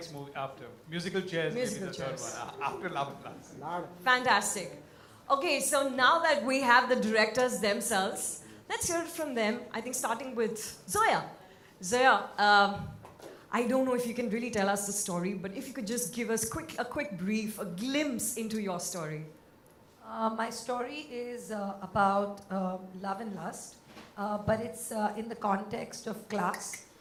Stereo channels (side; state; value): both; identical; correlation 1.00